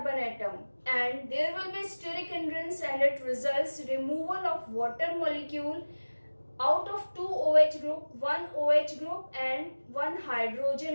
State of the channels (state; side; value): inverted; both; correlation -1.00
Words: atom, and there will be steric hindrance, and it results removal of water molecule out of 2 OH group, 1 OH group and 1